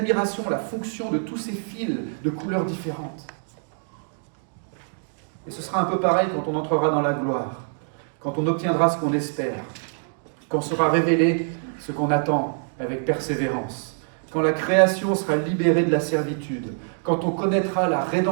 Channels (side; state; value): left; silent; digital silence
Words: la fonction de tous ces fils de couleurs différentes. Et ce sera un peu pareil quand on entrera dans la gloire, quand on obtiendra ce qu'on espère, quand sera révélé ce qu'on attend avec persévérance, quand la création sera libérée de la servitude, quand on connaîtra la